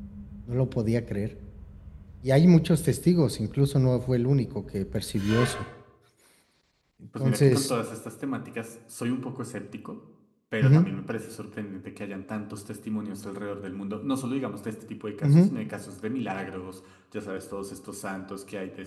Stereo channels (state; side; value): identical; both; correlation 1.00